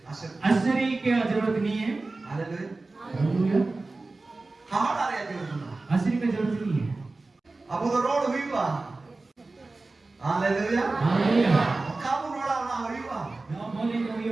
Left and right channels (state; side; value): quieter; left; 3.4 dB